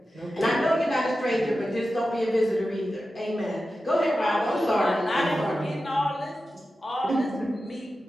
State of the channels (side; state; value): both; normal; correlation 0.93